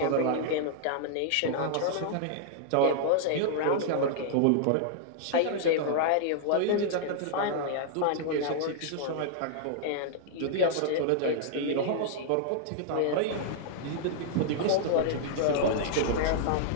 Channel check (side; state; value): both; different; correlation -0.01